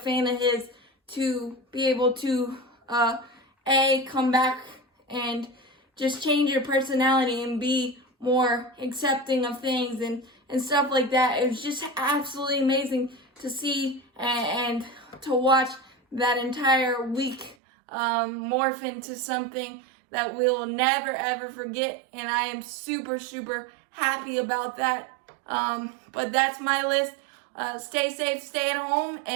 of his, to be able to come back and just change your personality and be more accepting of things and stuff like that. It was just absolutely amazing to see and to watch that entire week morph into something that we'll never ever forget, and I am super, super happy about that. But that's my list. Stay safe, stay at home,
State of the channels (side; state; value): left; drops out; at 17.6 s